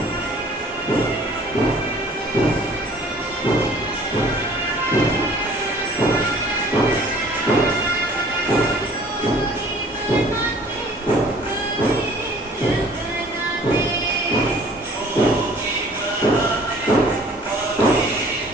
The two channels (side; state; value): both; normal; correlation 0.52